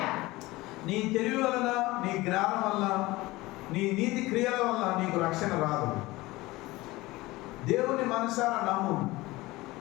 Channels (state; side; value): quieter; right; 20.0 dB